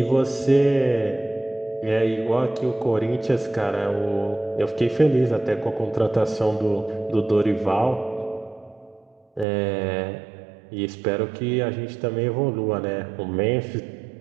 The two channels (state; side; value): drops out; left; at 9.5 s